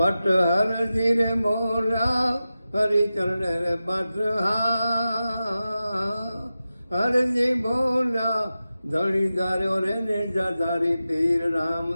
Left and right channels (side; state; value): both; inverted; correlation -0.93